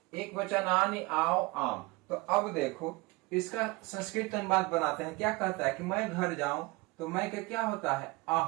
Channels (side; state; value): left; quieter; 23.5 dB